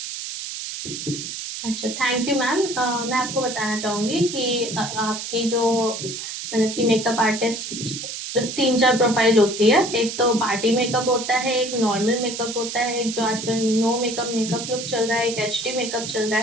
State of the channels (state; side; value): noise; right; hiss, 7 dB below the sound